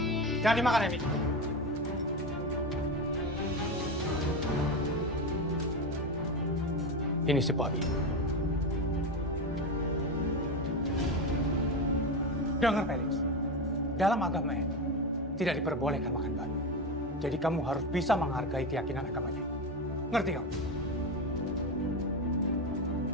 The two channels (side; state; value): both; normal; correlation 0.18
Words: Jangan dimakan, Emi. Ini si babi. Dengar, Felix. Dalam agama ini, tidak diperbolehkan makan babi. Jadi kamu harus bisa menghargai keyakinan agamanya. Ngerti kamu?